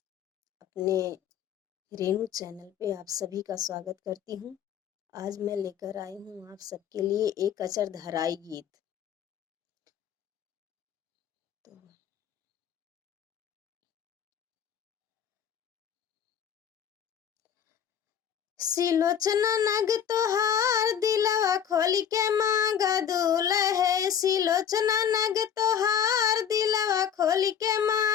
अपने रेणु चैनल पे आप सभी का स्वागत करती हूँ। आज मैं लेकर आई हूँ आप सबके लिए एक अचरधराई गीत। तो सिलोचना नग तोहार दिलवा खोली के मांगा दूल्हे। सिलोचना नग तोहार दिलवा खोली के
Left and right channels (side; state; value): right; quieter; 8.6 dB